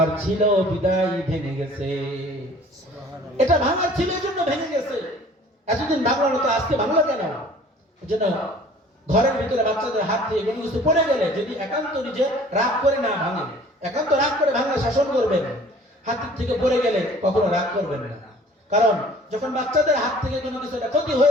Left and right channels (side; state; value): both; normal; correlation 0.50